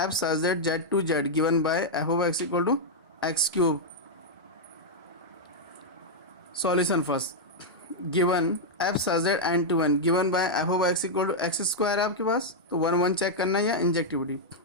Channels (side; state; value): both; normal; correlation -0.04